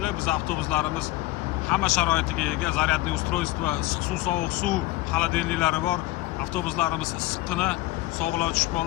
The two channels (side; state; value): right; quieter; 17.7 dB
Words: biz avtobuslarimiz hamma sharoitiga ega, zaryadniy устройство, issiq suv, sovuq suv, xolodilniklari bor. Avtobuslarimiz issiqqina, sovuqlar tushib